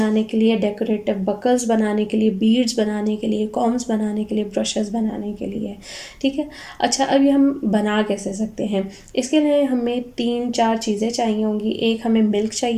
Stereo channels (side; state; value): both; identical; correlation 1.00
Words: के लिए, डेकोरेटिव बकल्स बनाने के लिए, बीड्स बनाने के लिए, कॉम्स बनाने के लिए, ब्रशेस बनाने के लिए। ठीक है। अच्छा, अब ये हम बना कैसे सकते हैं? इसके लिए हमें 3-4 चीज़ें चाहिए होंगी। एक हमें मिल्क